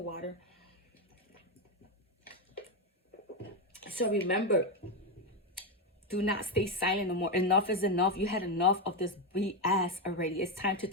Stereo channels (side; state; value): both; normal; correlation 0.08